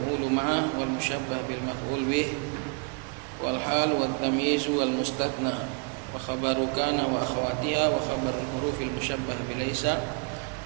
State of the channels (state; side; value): quieter; left; 35.5 dB